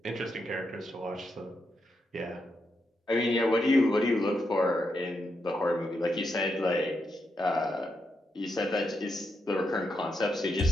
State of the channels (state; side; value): normal; both; correlation 0.83